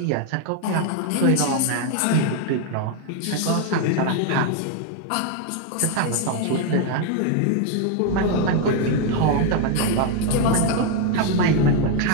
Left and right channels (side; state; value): both; different; correlation 0.01